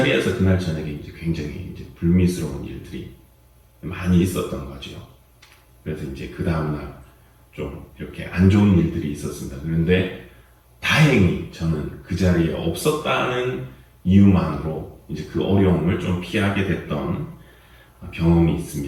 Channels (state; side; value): identical; both; correlation 1.00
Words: 그날 저녁에 이제 굉장히 이제 불미스러운 일들이 많이 있었던 거죠. 그래서 이제 그 다음날 좀 이렇게 안 좋은 일들이 있었습니다. 그런데 다행히 저는 그 자리에 없었다는 이유만으로 이제 그 어려움을 좀 피하게 됐던 경험이